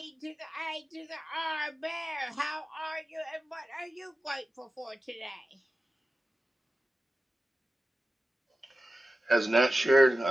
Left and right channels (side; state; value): both; normal; correlation 0.93